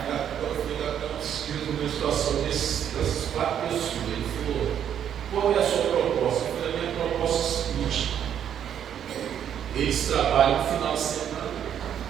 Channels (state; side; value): quieter; left; 9.3 dB